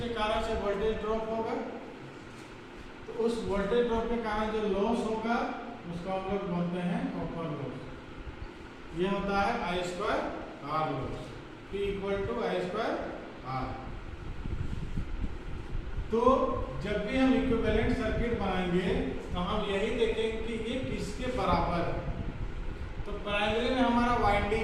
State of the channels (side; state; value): both; identical; correlation 1.00